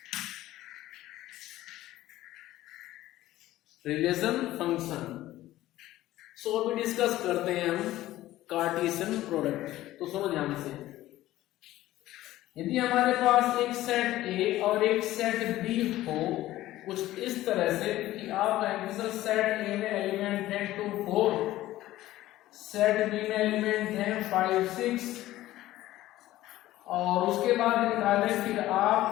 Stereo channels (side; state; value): right; quieter; 15.4 dB